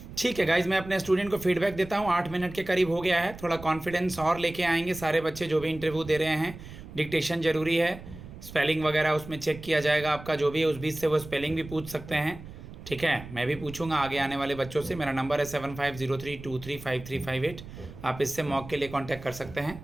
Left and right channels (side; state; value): right; noise; rumble, 15 dB below the sound